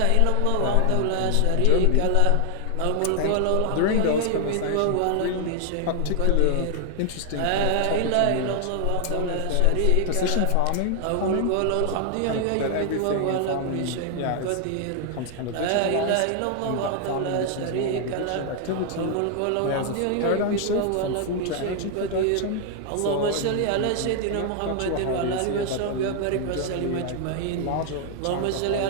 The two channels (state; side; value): different; both; correlation 0.00